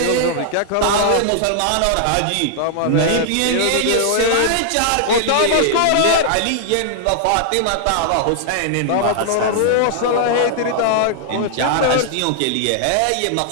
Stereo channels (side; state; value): both; different; correlation -0.01